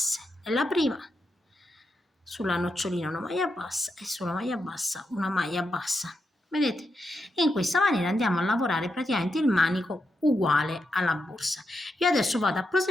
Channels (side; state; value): both; normal; correlation 0.85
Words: Nella prima sulla nocciolina una maglia bassa e sulla maglia bassa una maglia bassa, vedete? E in questa maniera andiamo a lavorare praticamente il manico uguale alla borsa. Io adesso vado a